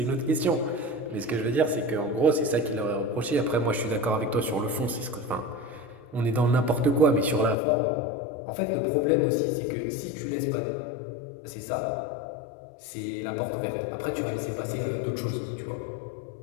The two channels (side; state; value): right; drops out; at 7.6 s